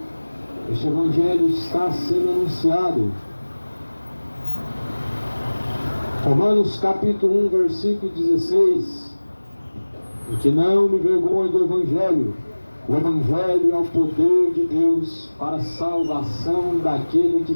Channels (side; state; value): both; inverted; correlation -1.00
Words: Este Evangelho está sendo anunciado. Romanos capítulo 1, versículo 16. E que não me vergonhe do Evangelho. O Evangelho é o poder de Deus para a salvação daquele que